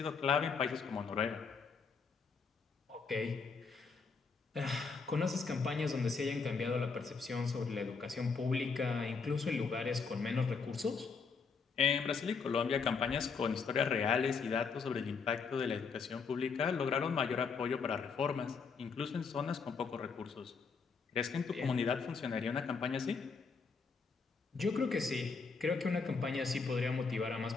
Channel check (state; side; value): quieter; right; 5.2 dB